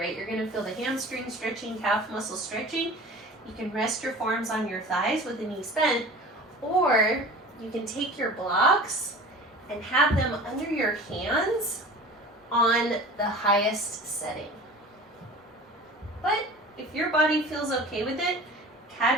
you're gonna feel the hamstring stretching, calf muscle stretching. You can rest your forearms on your thighs with the knees bent, or you can take your blocks and have them under your hands on the highest setting. But if your body feels okay with it,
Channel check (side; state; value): both; normal; correlation 0.39